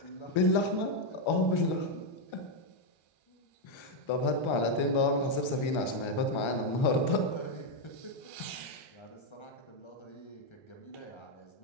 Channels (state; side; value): late; right; 1.3 ms